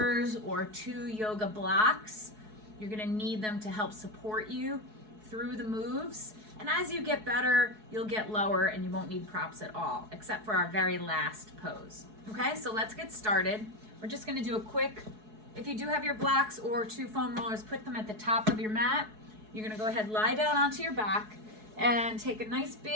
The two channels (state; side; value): late; left; 4.7 ms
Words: or 2 yoga blocks, you're going to need them to help support you through the moves. And as you get better, you'll get lower and you won't need props at all, except for our very last pose. Okay, so let's get started. We're just gonna do a quick, if you do have your blocks or 2 foam rollers, put them at the top of your mat. You're gonna go ahead, lie down onto your back and take a nice